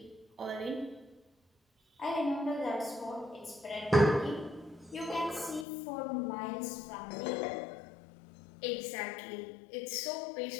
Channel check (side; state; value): right; drops out; at 5.7 s